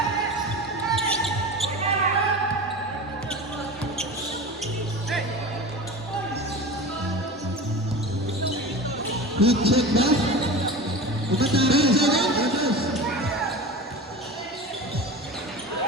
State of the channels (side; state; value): both; normal; correlation 0.31